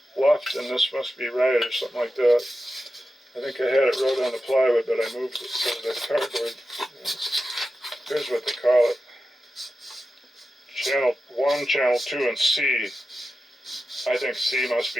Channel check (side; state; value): both; normal; correlation 0.92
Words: left, and this must be right, or something like that. I think I had it wrote on the plywood, but I moved it to the cardboard. Here's what they call it. channel 1, channel 2, and C. I think C must